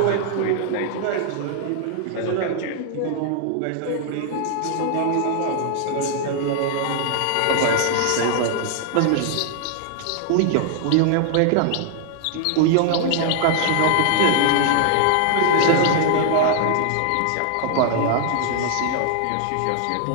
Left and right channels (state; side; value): different; both; correlation 0.00